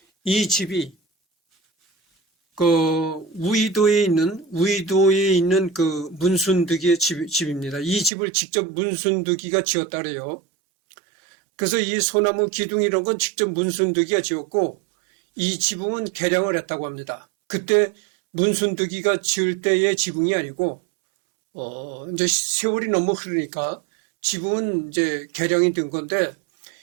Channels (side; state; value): left; drops out; at 8.1 s